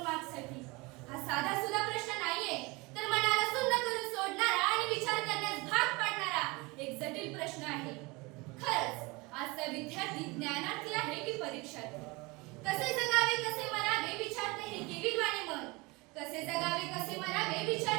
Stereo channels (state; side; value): quieter; left; 25.1 dB